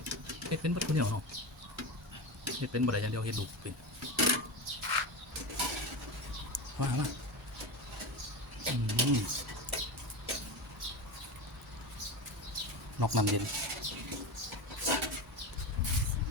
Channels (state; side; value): normal; both; correlation 0.22